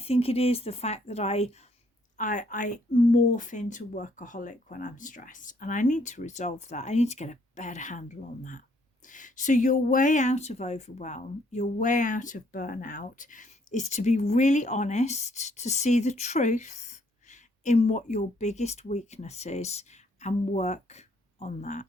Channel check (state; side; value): normal; both; correlation 0.67